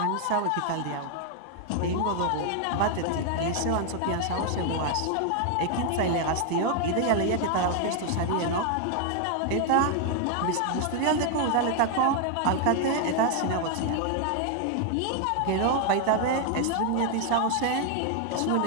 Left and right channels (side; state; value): both; different; correlation 0.00